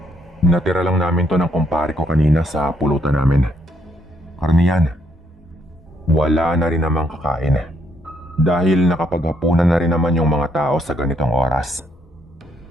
Natira lang namin to ng kumpare ko kanina sa pulutan namin. Karne yan. Wala na rin namang kakain dahil nakapaghapunan na rin naman yung mga tao sa ganitong oras.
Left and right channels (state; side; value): normal; both; correlation 0.71